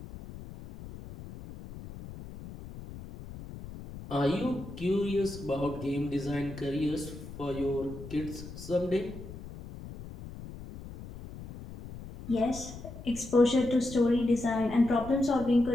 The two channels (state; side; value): noise; left; rumble, 13 dB below the sound